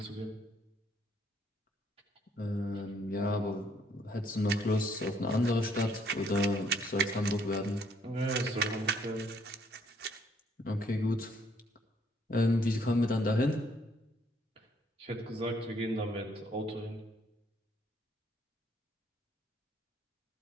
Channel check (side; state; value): both; normal; correlation 0.67